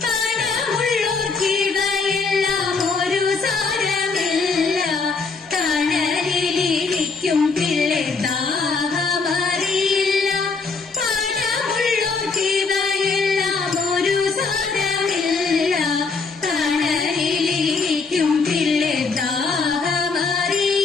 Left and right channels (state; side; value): quieter; right; 4.5 dB